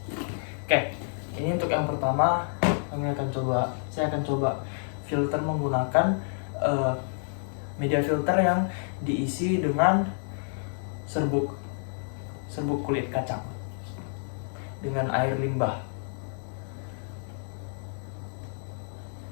Oke, ini untuk yang pertama saya akan coba filter menggunakan media filter yang diisi dengan serbuk kulit kacang dengan air limbah.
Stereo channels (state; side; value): silent; right; digital silence